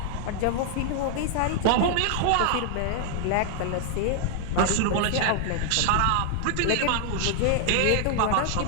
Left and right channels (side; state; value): both; different; correlation 0.00